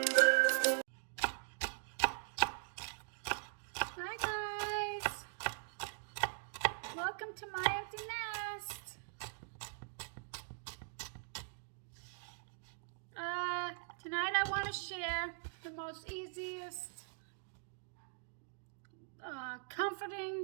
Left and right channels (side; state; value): left; silent; digital silence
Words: guys, welcome to my empty nest. Tonight I want to share the most easiest,